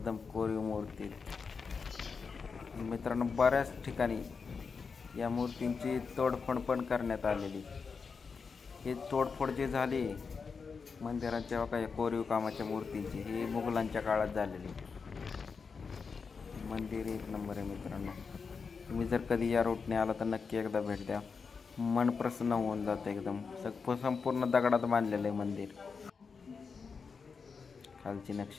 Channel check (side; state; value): right; quieter; 5.3 dB